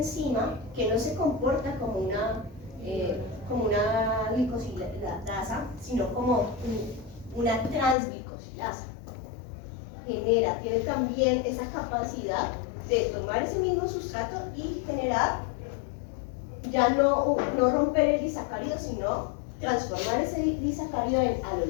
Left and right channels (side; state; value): right; drops out; at 8.0 s